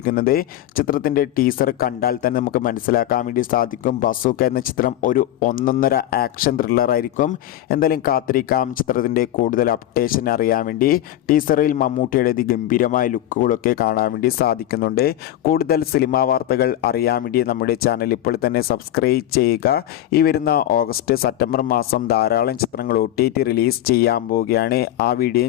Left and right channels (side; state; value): right; quieter; 12.9 dB